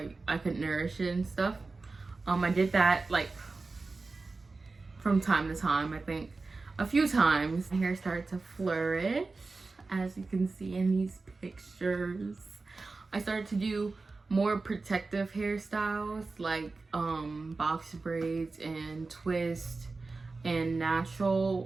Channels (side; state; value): left; quieter; 3.8 dB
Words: I could nourish it and stuff. I did that like from time to time. I think a few times. My hair started to flourish, as you can see in these pictures. I started to do more protective hairstyles like box braids and twist and